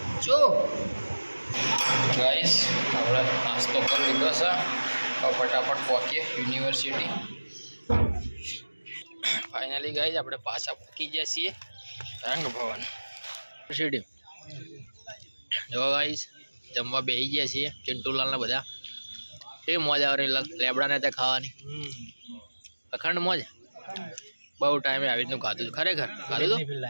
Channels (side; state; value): both; inverted; correlation -1.00